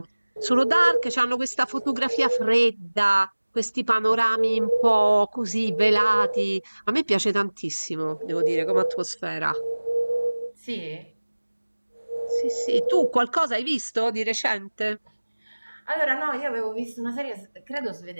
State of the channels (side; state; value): both; inverted; correlation -1.00